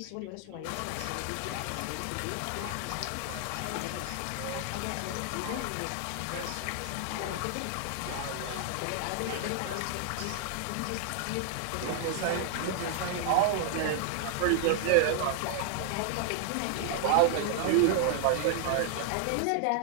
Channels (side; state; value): both; different; correlation 0.00